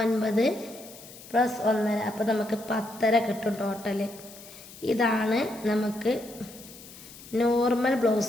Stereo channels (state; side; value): noise; left; hiss, 18 dB below the sound